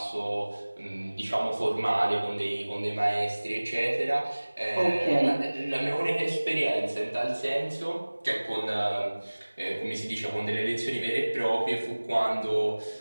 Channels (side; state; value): both; inverted; correlation -1.00